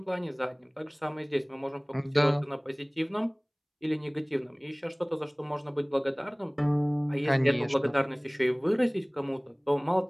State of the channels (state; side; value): identical; both; correlation 1.00